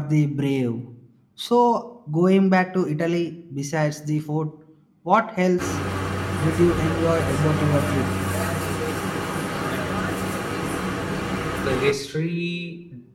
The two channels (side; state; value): both; identical; correlation 1.00